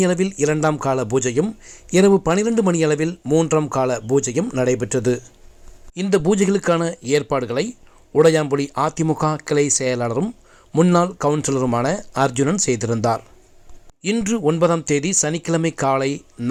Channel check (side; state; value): both; identical; correlation 1.00